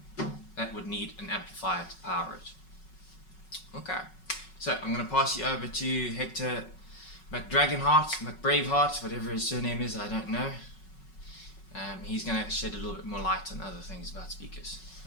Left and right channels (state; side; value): late; right; 5.4 ms